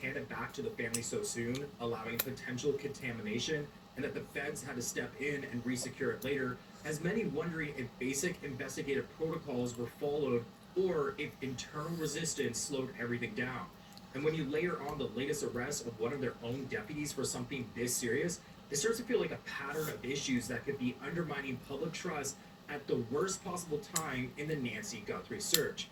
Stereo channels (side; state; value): both; identical; correlation 1.00